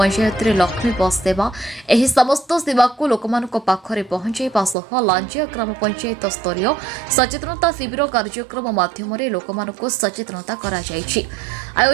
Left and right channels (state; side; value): drops out; left; at 4.8 s